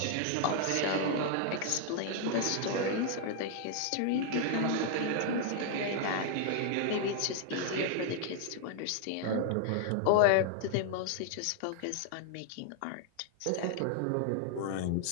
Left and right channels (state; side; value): different; both; correlation 0.00